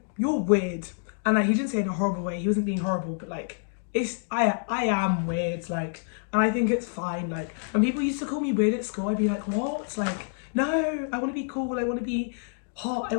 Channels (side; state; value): right; silent; digital silence